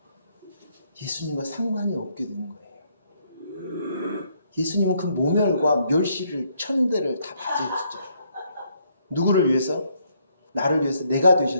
예수님과 상관이 없게 되는 거예요. 예수님은 그 모멸과 멸시를 천대를 다 받으셨죠. 누구를 위해서? 나를 위해서 내가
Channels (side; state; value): both; inverted; correlation -0.71